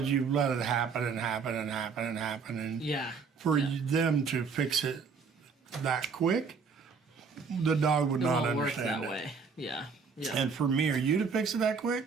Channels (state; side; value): quieter; left; 5.4 dB